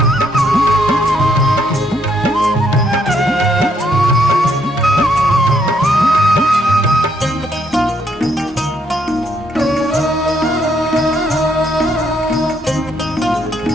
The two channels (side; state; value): both; normal; correlation 0.71